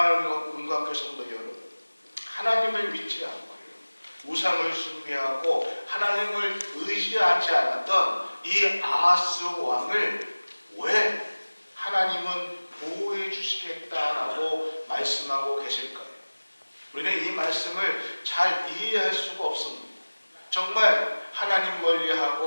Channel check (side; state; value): both; inverted; correlation -1.00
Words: 문광교 성도 여러분, 하나님을 믿지 않고 우상을 숭배하고 하나님을 의지하지 않았던 이 아하스 왕을 왜 하나님은 보호해 주시겠다라고 말씀하고 계실까요? 우리는 이 말씀을 잘 이해할 수가 없습니다. 정말 하나님